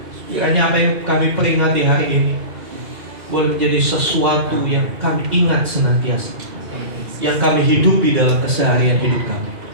Kiranya apa yang kami peringati hari ini boleh menjadi sesuatu yang kami ingat senantiasa, yang kami hidupi dalam keseharian hidup kami.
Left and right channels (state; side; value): late; left; 2.0 ms